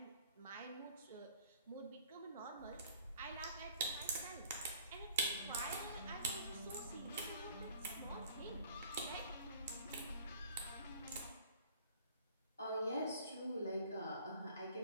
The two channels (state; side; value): inverted; both; correlation -0.53